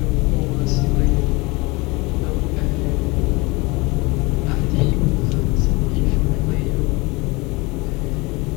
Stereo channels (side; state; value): right; quieter; 24.9 dB